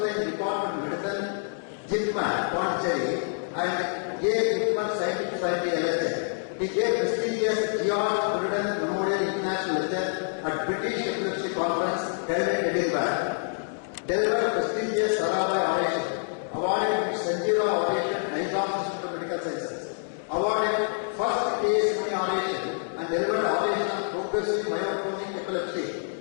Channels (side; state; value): right; silent; digital silence